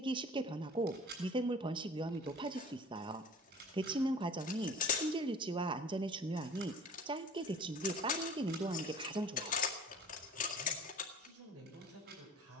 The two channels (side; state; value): both; normal; correlation 0.45